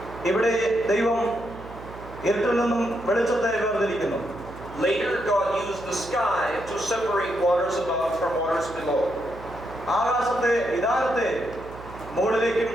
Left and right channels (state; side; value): noise; right; hum, 15 dB below the sound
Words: ഇവിടെ ദൈവം ഇരുട്ടിൽ നിന്നും വെളിച്ചത്തെ വേർതിരിക്കുന്നു. Later God used the sky to separate waters above from waters below. ആകാശത്തെ വിധാനത്തെ മുകളിലേക്കും